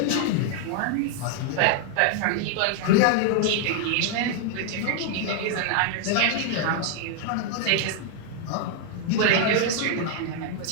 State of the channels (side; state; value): both; different; correlation 0.00